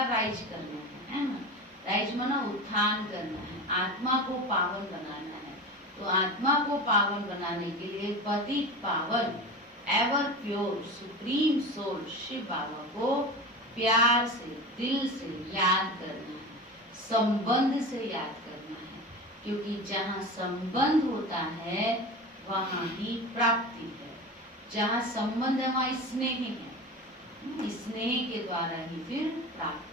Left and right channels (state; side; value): normal; both; correlation 0.29